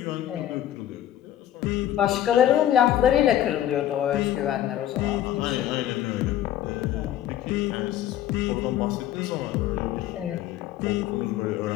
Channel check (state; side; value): quieter; right; 11.9 dB